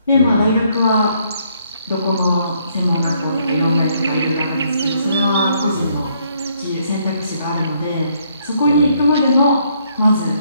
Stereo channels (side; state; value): both; inverted; correlation -0.70